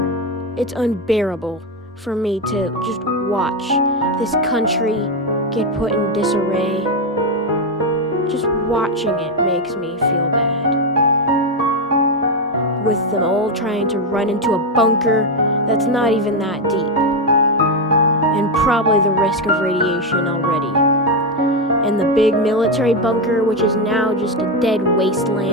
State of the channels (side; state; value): both; normal; correlation 0.07